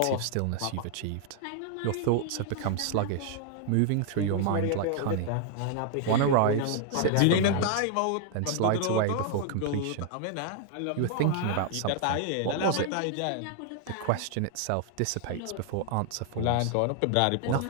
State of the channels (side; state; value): both; different; correlation 0.00